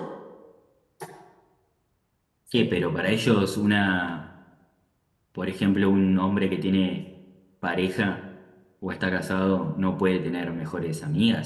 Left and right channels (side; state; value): both; identical; correlation 1.00